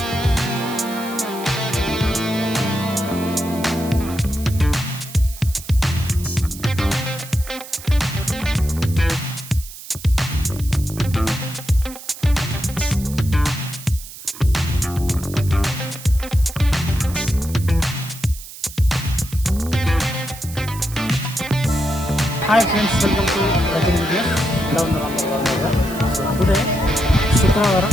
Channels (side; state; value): right; noise; hiss, 14 dB below the sound